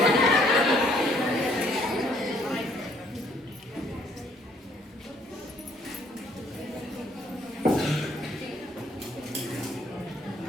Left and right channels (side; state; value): both; normal; correlation 0.64